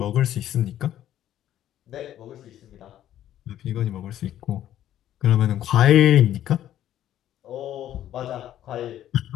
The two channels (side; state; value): right; quieter; 11.9 dB